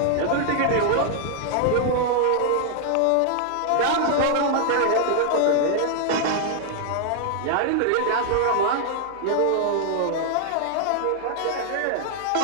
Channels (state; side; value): different; both; correlation 0.00